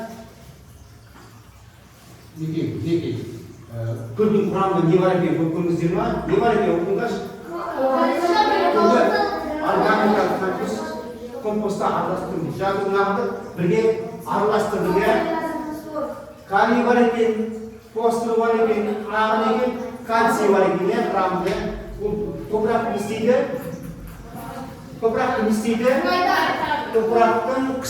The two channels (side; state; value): both; identical; correlation 1.00